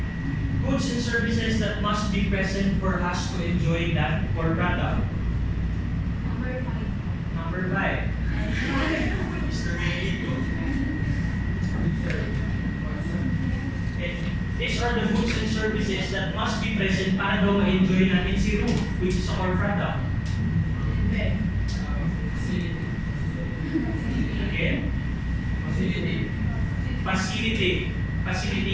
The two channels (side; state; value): both; identical; correlation 1.00